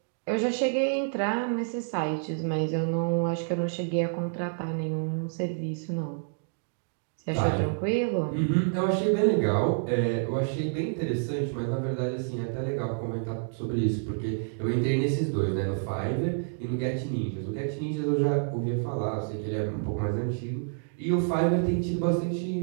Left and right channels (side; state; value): left; silent; digital silence